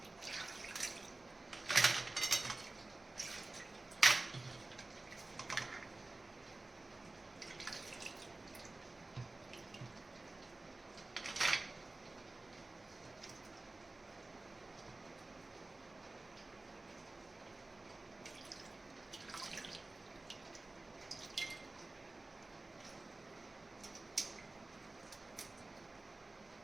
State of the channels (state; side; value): quieter; left; 3.1 dB